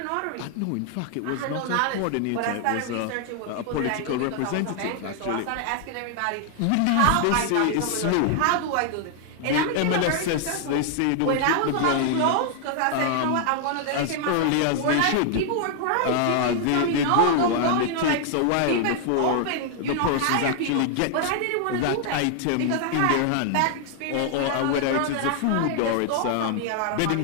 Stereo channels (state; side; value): different; both; correlation 0.00